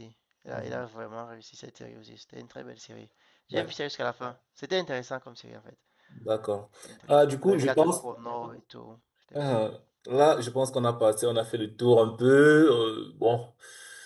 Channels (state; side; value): identical; both; correlation 1.00